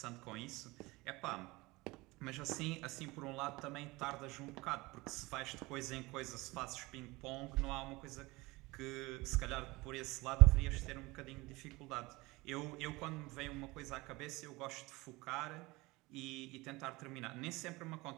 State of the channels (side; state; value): left; quieter; 22.2 dB